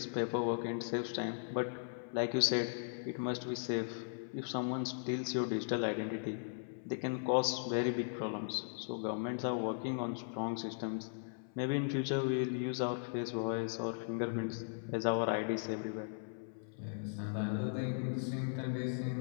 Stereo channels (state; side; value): silent; right; 53 dB below the other